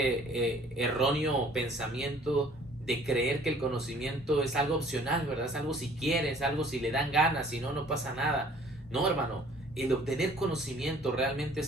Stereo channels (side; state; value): both; normal; correlation 0.54